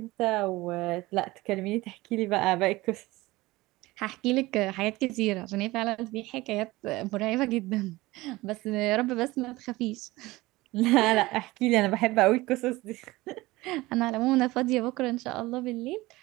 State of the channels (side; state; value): left; quieter; 19.8 dB